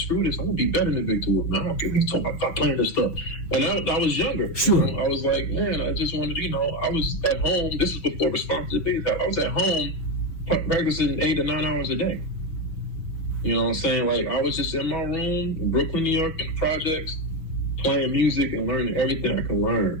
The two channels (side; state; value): right; late; 6.1 ms